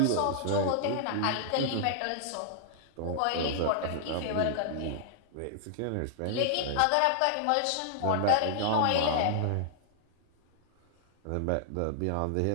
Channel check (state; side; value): different; both; correlation -0.01